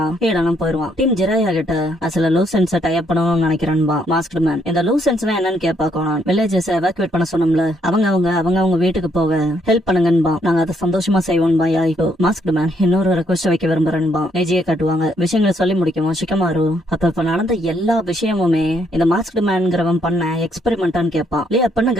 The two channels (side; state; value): both; normal; correlation 0.72